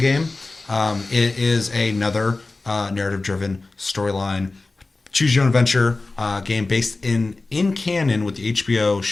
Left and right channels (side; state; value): right; quieter; 3.4 dB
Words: It is another narrative-driven storyline, choose your own adventure game based in canon with the HBO